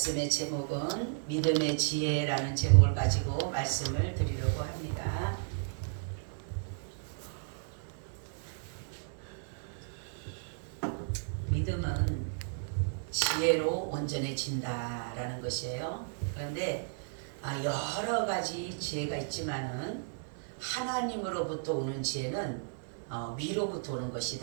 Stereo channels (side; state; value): left; silent; 55 dB below the other